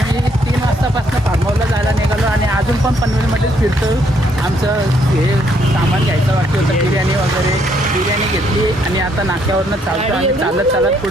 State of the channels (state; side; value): normal; both; correlation 0.70